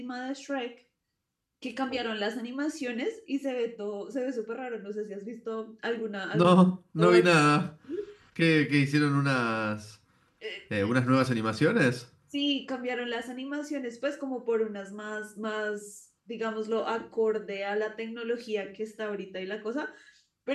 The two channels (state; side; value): identical; both; correlation 1.00